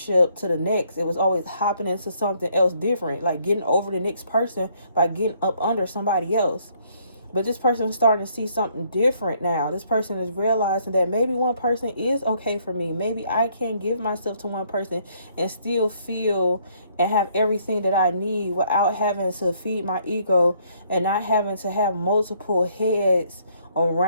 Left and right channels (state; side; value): inverted; both; correlation -0.67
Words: to the next. It was always hopping into something else different, like getting over the next person by getting up under somebody else. But this person is starting to see something different now. This person is realizing that maybe one person is okay for me. Maybe I can give myself to one person and still feel and have everything that I need without having to feed my ego and not having to have multiple heads